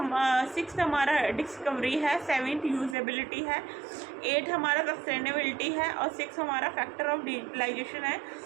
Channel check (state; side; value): drops out; left; at 3.0 s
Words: 6th हमारा डिस्कवरी है. 7th यूजेबिलिटी है. 8 हमारा सस्टेनेबिलिटी है. और 6 हमारा फैक्टर ऑफ डिजिटलाइजेशन है.